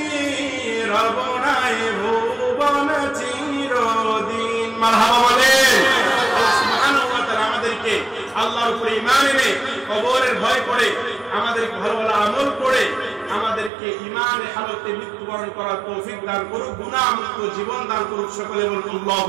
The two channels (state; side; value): drops out; left; at 13.7 s